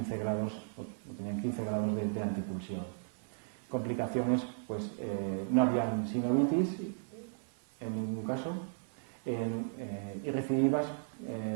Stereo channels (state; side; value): silent; left; digital silence